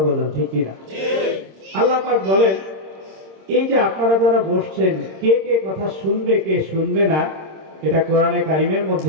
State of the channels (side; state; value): left; late; 26 ms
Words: বলেন ঠিক কিনা? আল্লাহ পাক বলেন, এই যে আপনারা যারা বসছেন, কে কে কথা শুনবে কে শুনবে না, এটা কোরআনে কারিমের মধ্যে